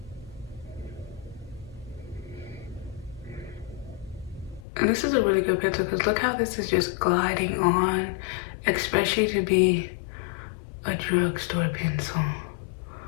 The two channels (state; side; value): drops out; right; at 4.7 s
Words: And this is a really good pencil because look how this is just gliding on, especially to be a drugstore pencil.